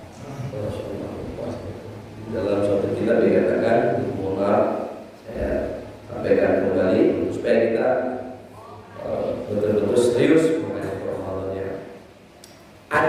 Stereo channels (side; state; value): both; identical; correlation 1.00